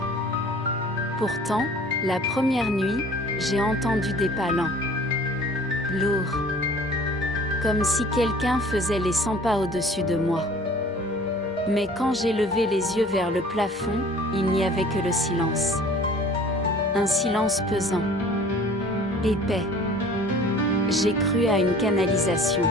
Pourtant, la première nuit, j'ai entendu des pas lents. Lourds. Comme si quelqu'un faisait les 100 pas au-dessus de moi. Mais quand j'ai levé les yeux vers le plafond, il n'y avait que le silence. Un silence pesant. Épais. J'ai cru à une canalisation.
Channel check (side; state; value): both; normal; correlation 0.49